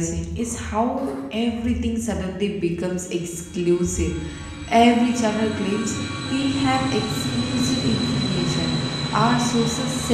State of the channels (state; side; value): identical; both; correlation 1.00